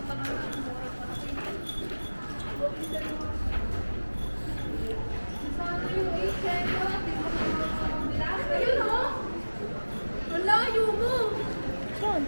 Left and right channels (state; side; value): inverted; both; correlation -1.00